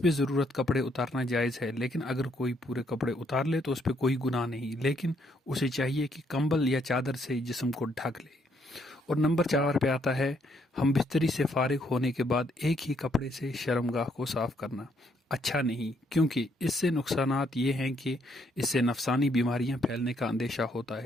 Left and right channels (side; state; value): both; normal; correlation 0.71